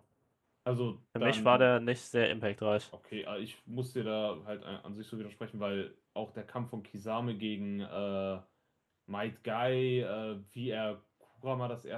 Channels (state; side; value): identical; both; correlation 1.00